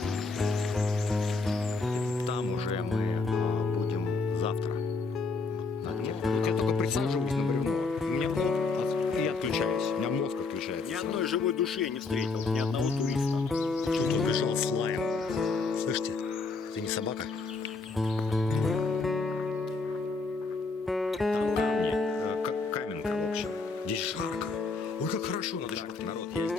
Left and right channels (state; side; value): quieter; right; 4.0 dB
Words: Там уже мы будем завтра. На дне. Вот я только присаживаюсь на бревно. У меня и отключаюсь. У меня мозг отключается. Ни одной живой души я не встретил. Ни одного туриста. Что-то убежал с лаем. Слышите? Это не собака? Там камни, как каменка, в общем. Здесь жарко. Ой, как хорошо. Надо жарко. Народ, я